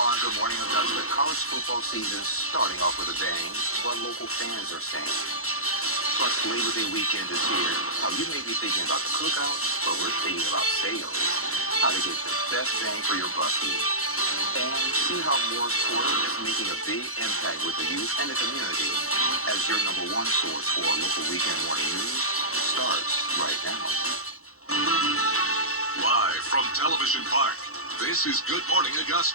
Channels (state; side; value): late; right; 0.63 ms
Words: on Good Morning Augusta, college football season starting off with a bang. What local fans are saying. Plus, Labor Day weekend is here. Now, you may be thinking about the cookout, but we're thinking about sales. How to get the best bang for your bucky. And see how Morris Porter is making a big impact with the youth and the community as your number one source for local weekend morning news starts right now. Live from Television Park, this is Good Morning